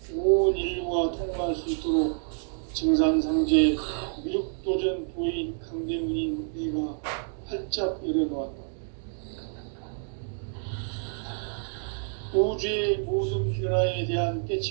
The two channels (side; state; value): left; silent; 59 dB below the other